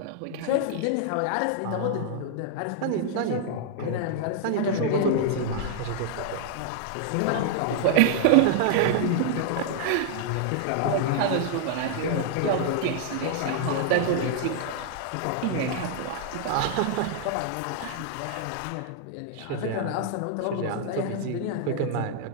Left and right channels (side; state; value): both; different; correlation -0.01